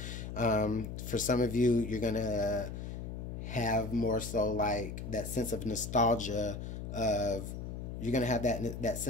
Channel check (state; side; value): noise; left; hum, 7 dB below the sound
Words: For some of you, you're going to have more so like that sense of nostalgia of, you're going to have that